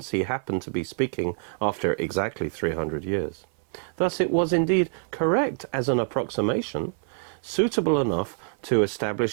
he happened to be speaking after exactly 300 years. Thus it was indeed correct as an approximation, suitable enough to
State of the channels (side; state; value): left; silent; 61 dB below the other